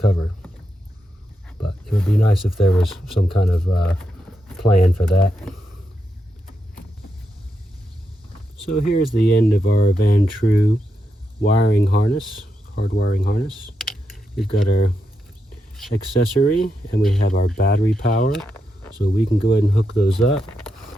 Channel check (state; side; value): normal; both; correlation 0.84